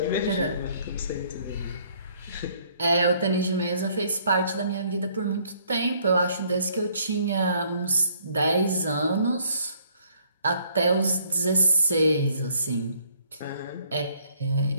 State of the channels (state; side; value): inverted; both; correlation -0.64